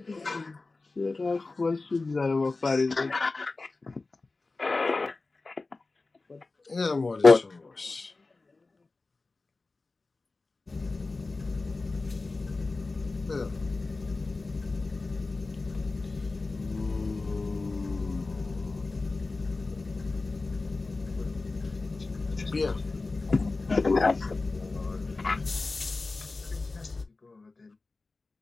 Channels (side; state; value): right; quieter; 3.5 dB